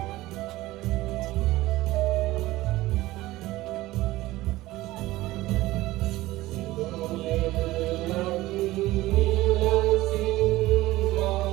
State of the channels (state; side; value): quieter; left; 17.7 dB